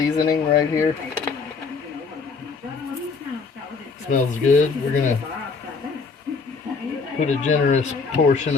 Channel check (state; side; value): quieter; right; 4.8 dB